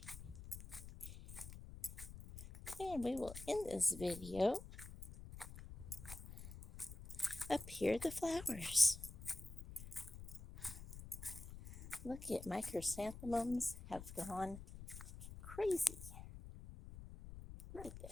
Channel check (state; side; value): noise; left; rumble, 12 dB below the sound